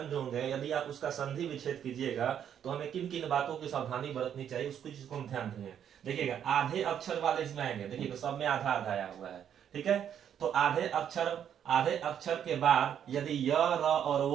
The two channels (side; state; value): left; quieter; 9.1 dB